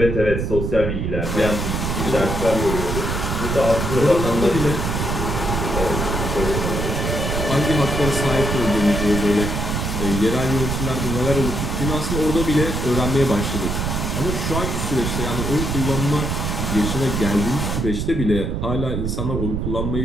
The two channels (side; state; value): right; noise; rumble, 1 dB below the sound